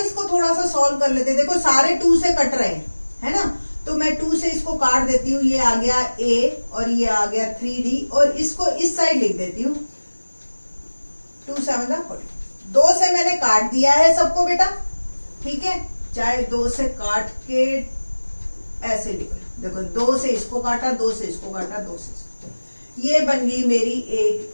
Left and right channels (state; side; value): inverted; both; correlation -1.00